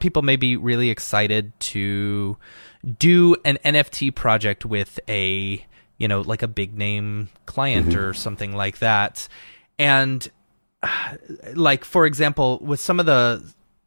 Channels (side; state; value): both; inverted; correlation -1.00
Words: people may be really excited to do an NFT project with a like a big name client or something like that. And like, for example, with some of the,